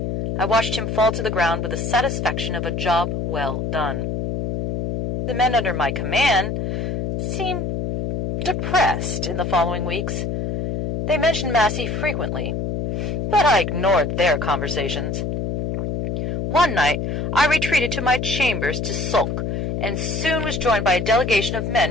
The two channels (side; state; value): left; noise; hum, 1 dB below the sound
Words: I watched him fall to the ground with the satisfaction of a job well done. The men under my command seemed depressed in the following weeks. They mentioned Massey frequently, but I ignored their conversations. One night I retreated to my chambers to sulk, and soon was joined by a delegation of men